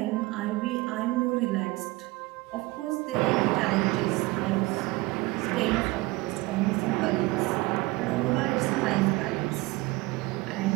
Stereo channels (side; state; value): left; quieter; 21.8 dB